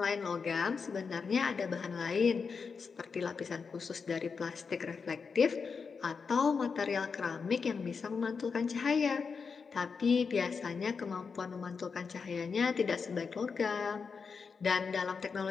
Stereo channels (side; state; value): right; quieter; 5.4 dB